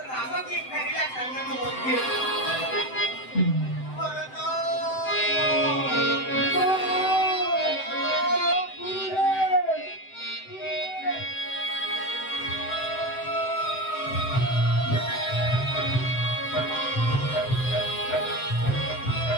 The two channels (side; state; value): right; late; 7.8 ms